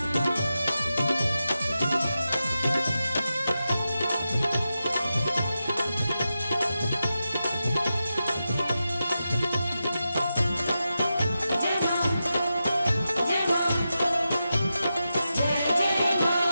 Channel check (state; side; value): inverted; both; correlation -0.90